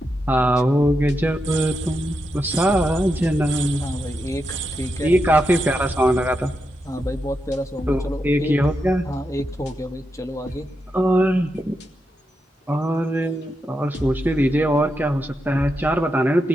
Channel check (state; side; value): normal; both; correlation 0.86